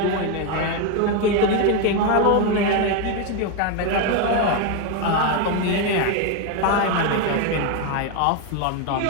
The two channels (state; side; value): different; both; correlation 0.02